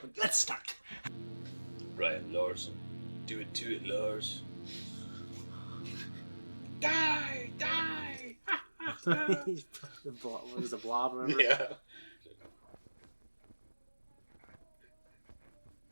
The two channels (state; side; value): inverted; both; correlation -1.00